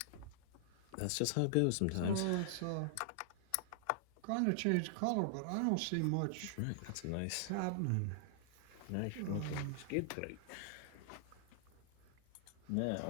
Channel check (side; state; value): both; different; correlation -0.01